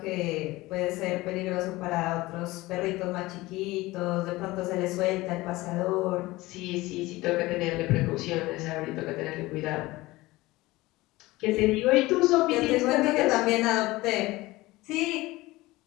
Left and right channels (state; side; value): quieter; right; 19.7 dB